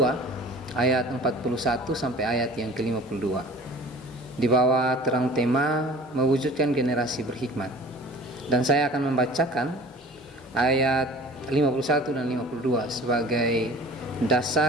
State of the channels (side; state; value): both; normal; correlation 0.43